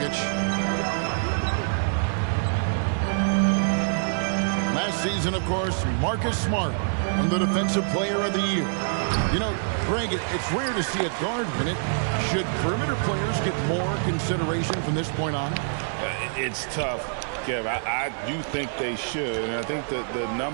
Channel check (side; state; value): left; silent; 55 dB below the other